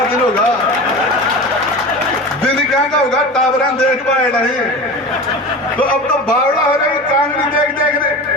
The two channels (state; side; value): normal; both; correlation 0.32